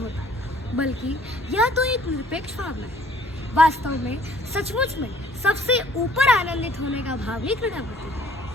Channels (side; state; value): both; normal; correlation 0.58